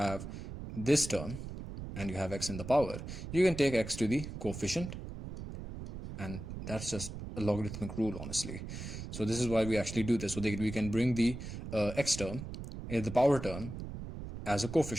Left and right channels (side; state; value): right; noise; rumble, 9 dB below the sound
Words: this term and you have x in the power, you can take x to the coefficient, and that's just a logarithmic rule, honestly. So this is why we actually do this, so that we can bring the x term, the power term, as a